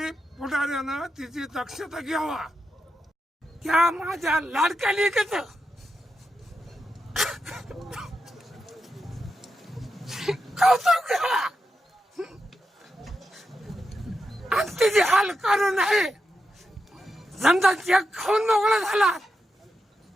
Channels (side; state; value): both; normal; correlation 0.87